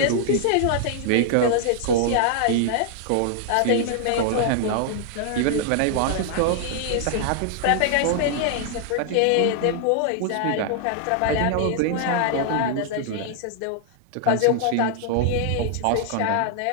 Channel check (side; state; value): both; different; correlation 0.00